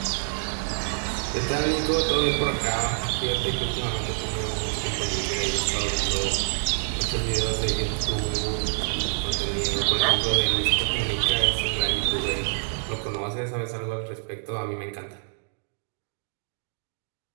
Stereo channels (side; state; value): left; silent; digital silence